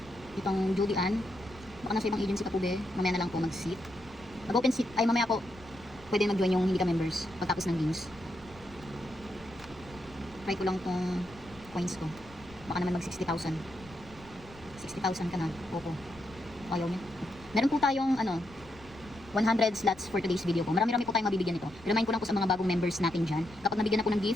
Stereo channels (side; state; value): left; noise; rumble, 21 dB below the sound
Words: Itong Judy Ann. Baka nasa ibang agency ka po be. Mamaya na lang po mag-seat. Mag-open seat. Ay mamaya po. Pwede mag-join yung hindi ka-members. Pagtapos ng games. Try ko lang tong coins ko. Baka naman mag 60,000. 60,000 ka na. Opo. Ayaw niya. Meron po tayong 100 slots for today's video po. Marami-rami po tayong mabibigyan nito. Remind ko lang po sa mga bagong members natin dyan. Kapag nabigyan na po ng